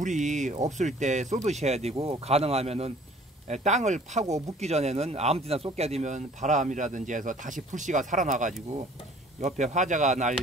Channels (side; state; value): both; normal; correlation 0.53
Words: 없을 때 쏟으셔야 되고, 가능하면은 땅을 파고 묻기 전에는 아무데나 쏟게 되면 바람이라든지 해서 다시 불씨가 살아나가지고 옆에 화재가